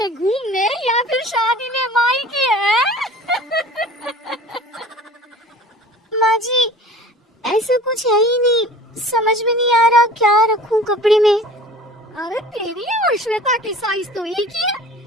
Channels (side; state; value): both; normal; correlation 0.44